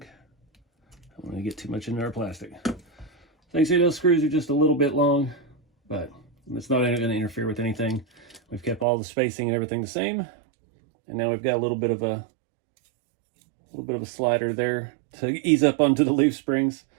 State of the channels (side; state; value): left; drops out; at 8.8 s